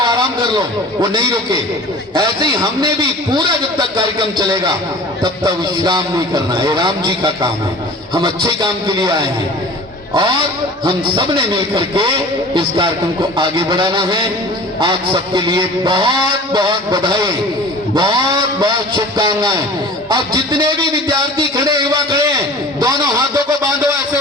आराम कर लो, वो नहीं रुके। ऐसे ही हमने भी पूरा जब तक कार्यक्रम चलेगा तब तक विश्राम नहीं करना। ये राम जी का काम है, हम अच्छे काम के लिए आए हैं, और हम सब ने मिलकर के इस कार्यक्रम को आगे बढ़ाना है। आप सबके लिए बहुत बहुत बधाई, बहुत बहुत शुभकामनाएं। अब जितने भी विद्यार्थी खड़े, युवा खड़े हैं, दोनों हाथों को बांधो, ऐसे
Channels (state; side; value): normal; both; correlation 0.42